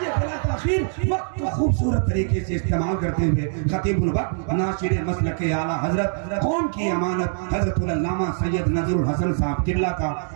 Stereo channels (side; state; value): left; silent; 63 dB below the other